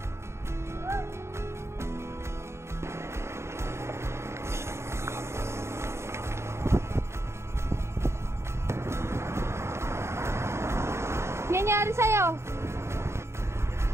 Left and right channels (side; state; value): left; late; 0.13 ms